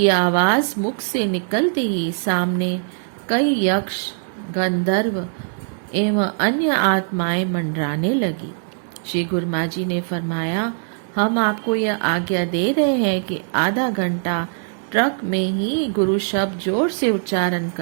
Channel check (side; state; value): left; silent; digital silence